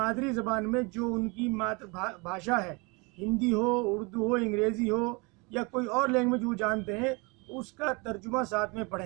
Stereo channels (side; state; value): left; quieter; 28.6 dB